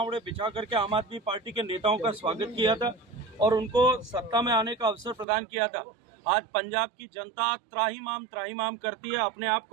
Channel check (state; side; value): drops out; left; at 5.2 s